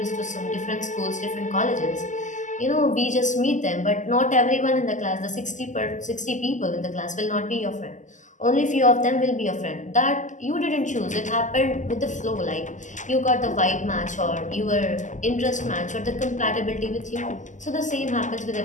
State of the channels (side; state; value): right; late; 0.36 ms